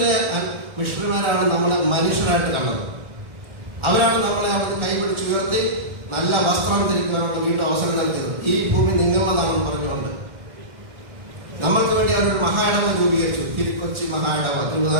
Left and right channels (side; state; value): left; late; 1.4 ms